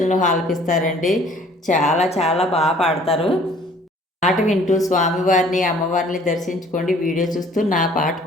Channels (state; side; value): normal; both; correlation 0.55